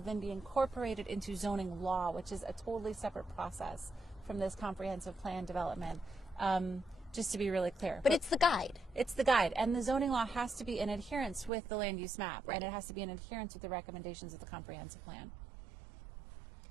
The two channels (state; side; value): drops out; left; at 11.5 s